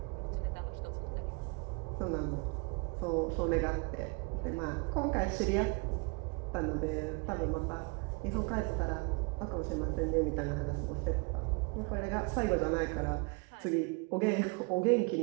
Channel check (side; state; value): left; quieter; 31.5 dB